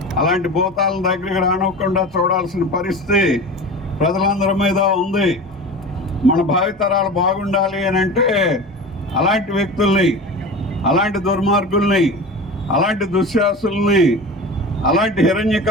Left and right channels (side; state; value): both; normal; correlation 0.32